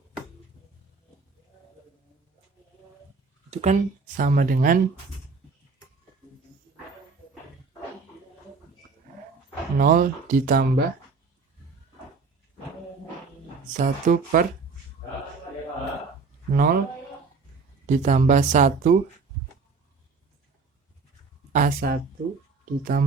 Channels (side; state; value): left; quieter; 4.6 dB